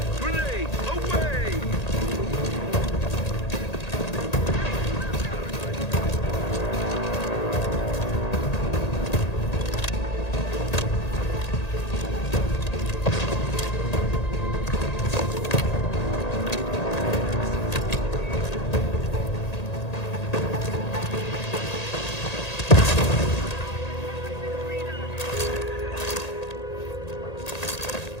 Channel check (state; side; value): late; right; 1.8 ms